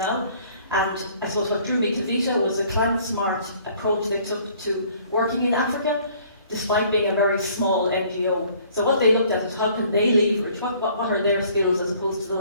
And I suppose what drew me to Vita was the climate-smart approach they took to working in Africa, despite being a very small NGO. So what they looked at is how can they leverage, what are their skills as opposed to the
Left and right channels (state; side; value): inverted; both; correlation -0.57